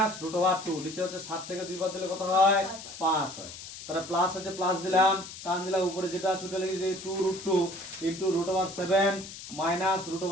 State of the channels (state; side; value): noise; left; hiss, 13 dB below the sound